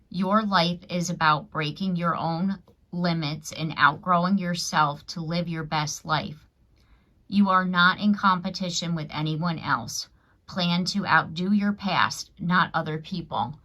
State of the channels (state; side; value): identical; both; correlation 1.00